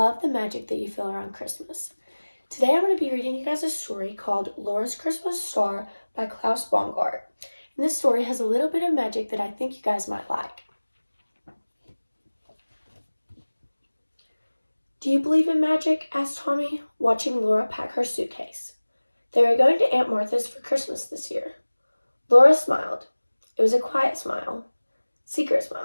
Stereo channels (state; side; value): inverted; both; correlation -1.00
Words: the magic that you feel around Christmas. Today I'm going to be reading you guys a story called Laura's Christmas Star by Klaus Baumgart. And this story has a little bit of magic that I think you guys might like. Do you believe in magic? Asked Tommy, watching Laura pack her suitcase. They were going to Aunt Martha's for Christmas this year. Laura smiled. It was a quiet smile. Secret